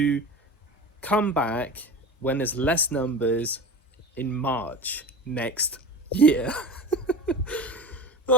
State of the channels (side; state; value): both; normal; correlation 0.31